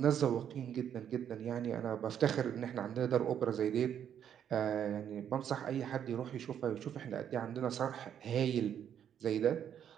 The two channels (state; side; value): quieter; left; 9.2 dB